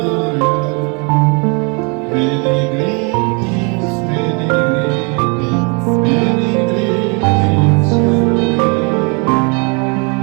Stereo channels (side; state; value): left; quieter; 33.8 dB